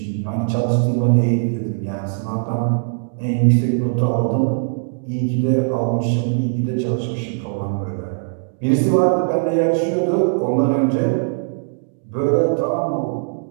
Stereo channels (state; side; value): silent; left; digital silence